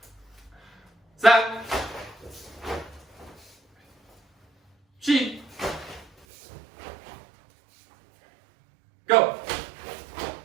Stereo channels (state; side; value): drops out; left; at 6.1 s